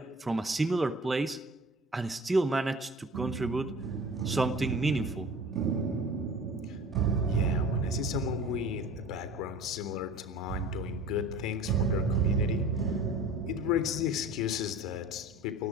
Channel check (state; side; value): normal; both; correlation 0.42